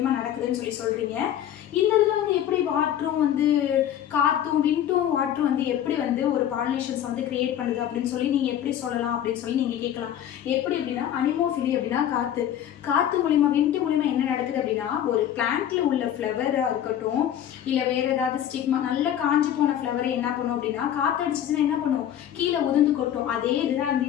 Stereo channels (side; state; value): right; quieter; 10.6 dB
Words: நடக்குதுன்னு சொல்கிறீங்க. இந்த இதில் வந்து எப்படி வாட்டரும் வந்து காற்றும் விண்டும் வாட்டரும் வந்து எப்படி வந்து ஒரு பாலினேஷன்ஸ் வந்து கிரியேட் பண்ணுது அப்படின்னு சொல்லி நீங்கள் எப்படி சொல்லலாம் அப்படின்னு சொல்லி நீங்கள் கேட்கலாம். எப்படி அப்படின்னா அனிமோஃபிலி அப்படின்னா காற்று மூலிமா விண்டு மூலிமா என்ன நடக்குது அப்படின்னா ஒரு பிளான்ட்ல உள்ள ஃப்ளவராக இருக்கட்டும், இல்லை வேற ஏதாவது ஸ்டிக்மா நல்ல காஞ்சி போன ஃப்ளவரை என்ன பண்ணும் அப்படின்னா காற்று அடிச்சிச்சுன்னா என்ன பண்ணும், கீழே உதிர்ந்து கொட்டும். அதே இதுதான் வந்து